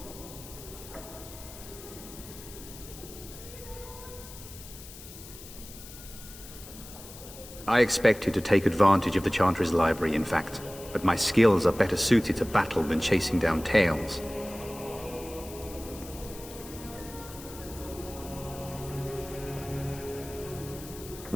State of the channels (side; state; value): left; noise; hiss, 15 dB below the sound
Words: I expected to take advantage of the Chantry's library, in fact, but my skills are better suited to battle than chasing down tales.